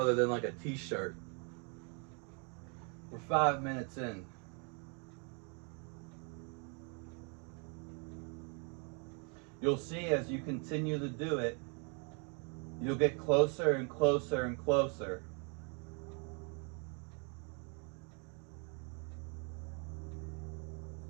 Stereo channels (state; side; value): quieter; left; 36.8 dB